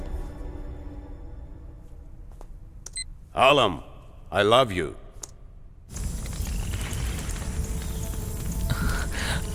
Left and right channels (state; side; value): identical; both; correlation 1.00